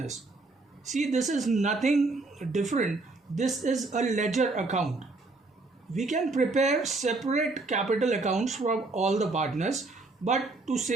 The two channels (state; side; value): quieter; left; 3.4 dB